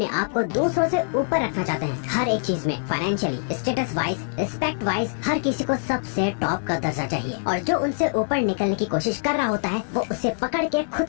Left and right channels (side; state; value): right; silent; 57 dB below the other